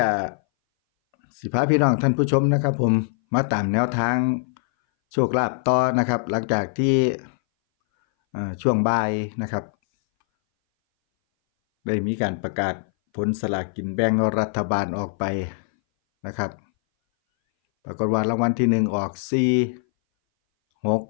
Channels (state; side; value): silent; right; 60 dB below the other